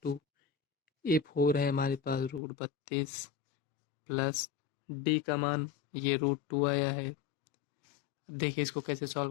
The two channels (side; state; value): right; drops out; at 2.4 s